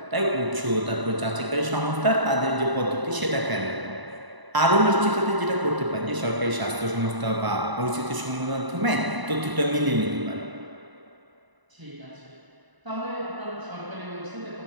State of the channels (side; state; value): left; late; 1.0 ms